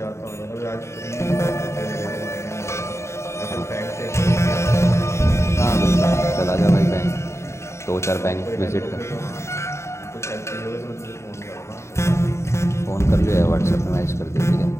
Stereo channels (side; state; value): right; late; 0.13 ms